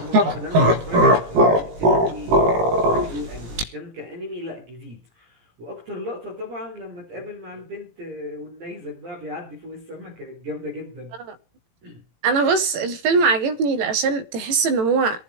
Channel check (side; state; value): left; late; 18 ms